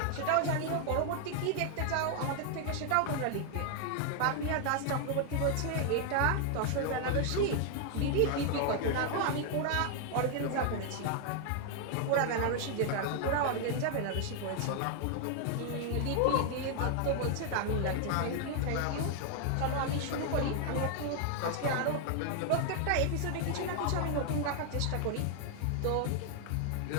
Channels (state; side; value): different; both; correlation 0.00